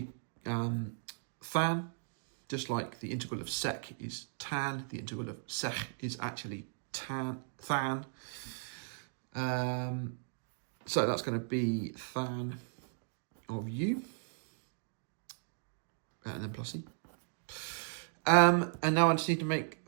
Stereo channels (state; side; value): silent; left; digital silence